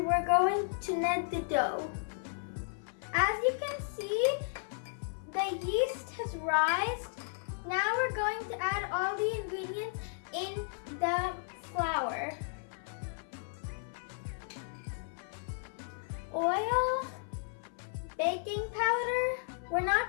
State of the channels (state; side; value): silent; right; 55 dB below the other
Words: we're going to knead the dough. As you can see, the yeast has risen. Now we're going to add all the ingredients in the flour. Oil, baking powder. We're